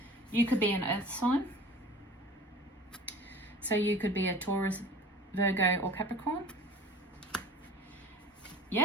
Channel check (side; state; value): both; normal; correlation 0.42